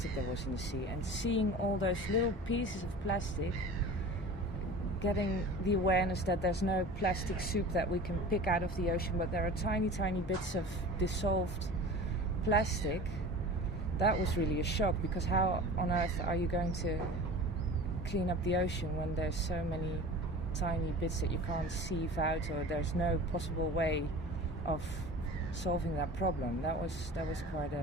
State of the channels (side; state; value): both; normal; correlation 0.38